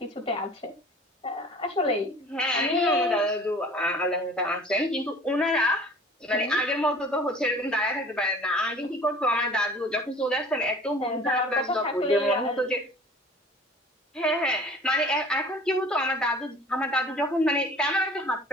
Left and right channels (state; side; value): normal; both; correlation 0.46